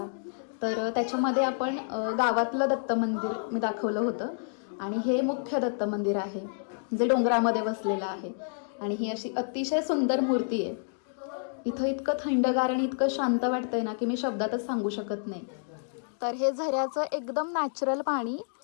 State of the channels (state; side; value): silent; right; digital silence